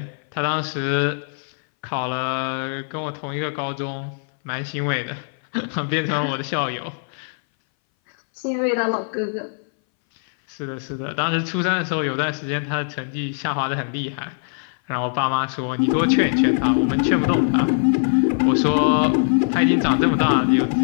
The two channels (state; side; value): silent; right; 61 dB below the other